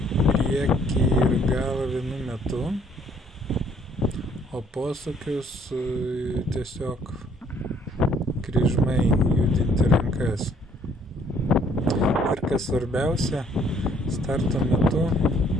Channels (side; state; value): both; normal; correlation 0.63